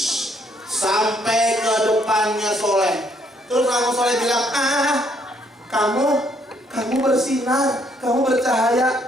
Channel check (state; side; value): normal; both; correlation 0.69